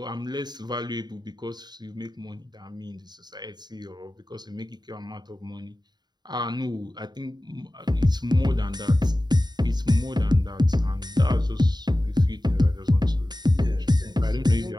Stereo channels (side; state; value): left; late; 0.20 ms